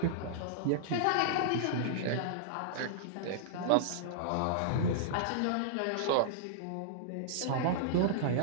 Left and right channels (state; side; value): different; both; correlation -0.02